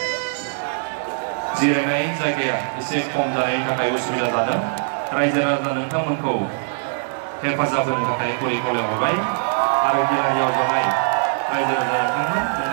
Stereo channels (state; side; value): silent; left; 60 dB below the other